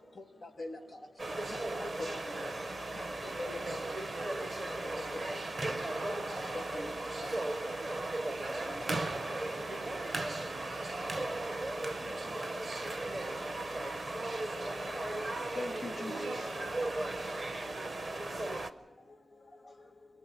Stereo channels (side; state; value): both; normal; correlation 0.94